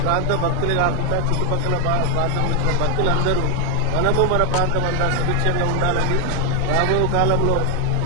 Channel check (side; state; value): both; different; correlation 0.00